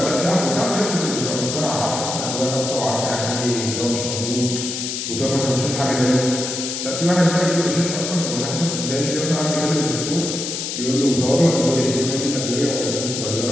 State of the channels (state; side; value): noise; left; hiss, 4 dB below the sound